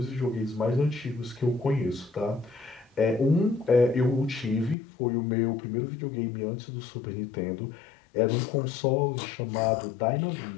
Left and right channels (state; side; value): drops out; right; at 4.8 s